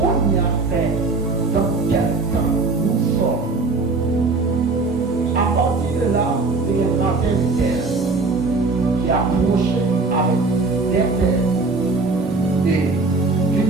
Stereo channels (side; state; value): left; quieter; 3.7 dB